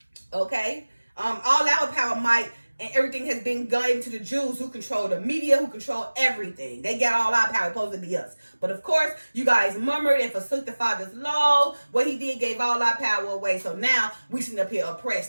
Okay? All our power, might, and everything has been given to the Jews, who control the media, who control everything. They got all our power, supposed to be us. But of course, you guys murmured and forsook the Father's law. What he did gave all our power away. So now we sitting up here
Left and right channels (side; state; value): both; inverted; correlation -1.00